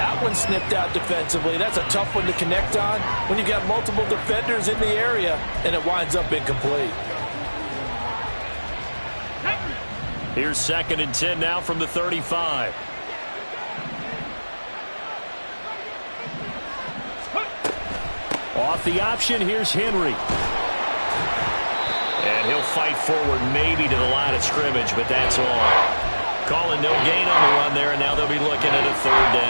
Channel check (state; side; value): inverted; both; correlation -1.00